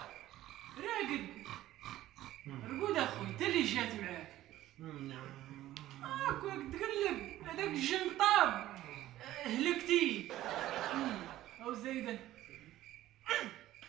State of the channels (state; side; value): quieter; left; 14.6 dB